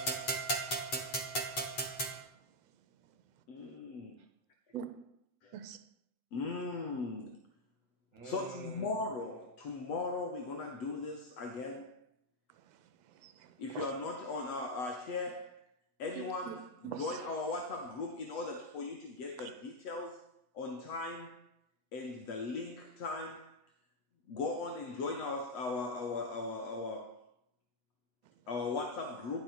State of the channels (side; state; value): right; late; 8.1 ms